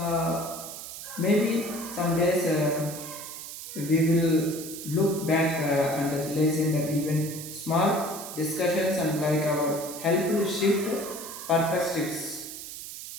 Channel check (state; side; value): noise; right; hiss, 10 dB below the sound